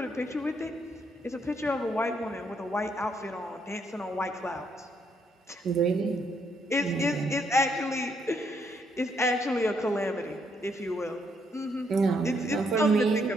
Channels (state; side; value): normal; both; correlation 0.73